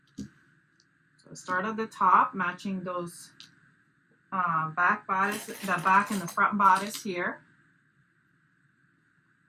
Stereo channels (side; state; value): both; identical; correlation 1.00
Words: So start at the top, matching those back bodice, the back and the front bodice here.